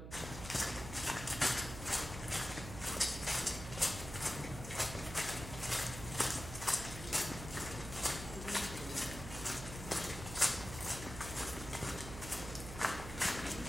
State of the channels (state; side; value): noise; right; hum, 10 dB below the sound